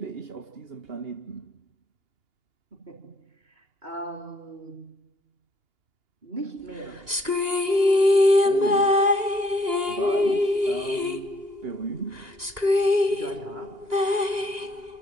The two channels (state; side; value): late; left; 2.8 ms